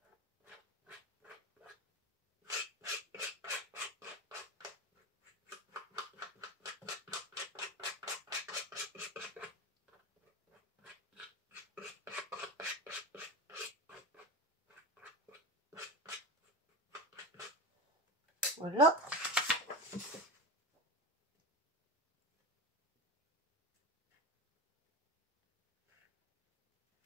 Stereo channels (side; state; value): both; normal; correlation 0.22